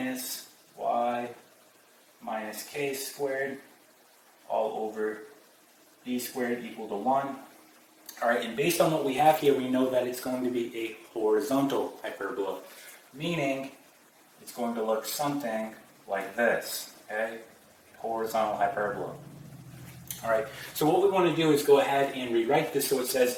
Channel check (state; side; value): identical; both; correlation 1.00